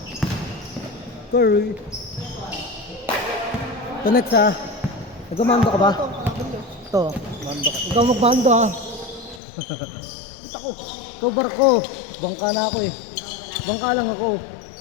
Curry. Ito next ha. Nagmamando ka ba? Ito. Ikaw magmando ha. Ito barko. Bangka na ako eh. Bangka lang ako.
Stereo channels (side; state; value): right; drops out; at 9.4 s